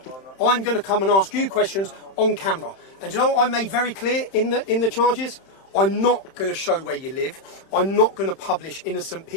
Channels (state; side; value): late; right; 31 ms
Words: I'm going to come and ask you questions on camera. And you know what I made very clear in the charges? I'm not going to show where you live. I'm not going to publish innocent